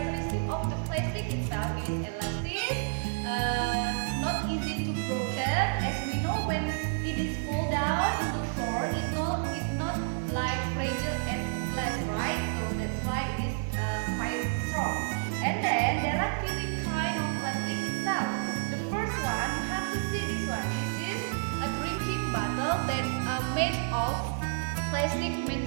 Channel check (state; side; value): silent; left; digital silence